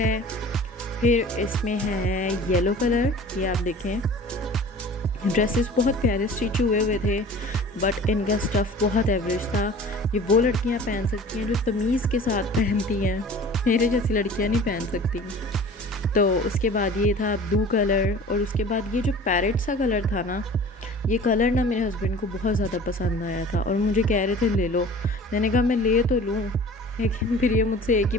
फिर इसमें है येलो कलर, ये आप देखें। ड्रेसेस बहुत प्यारे स्टिच हुए थे, बट इनका स्टफ़ बहुत एवरेज था। ये वो लड़कियां पहन सकती हैं जो तमीज़ के साथ पहनती हैं, मेरे जैसी लड़कियां नहीं पहन सकती। तो उसके बाद ये था ब्लू कलर, और उसके बाद ये जो पैरेट सा कलर था ना, ये कलर ना मेरे हस्बैंड को बहुत ज़्यादा पसंद आया था और मुझे कह रहे थे ले लो। मैंने कहा मैं ले तो लूँ, लेकिन फिर ये मुझसे एक ही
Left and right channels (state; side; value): normal; both; correlation 0.43